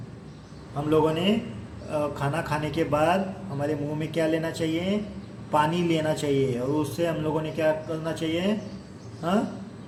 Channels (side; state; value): both; identical; correlation 1.00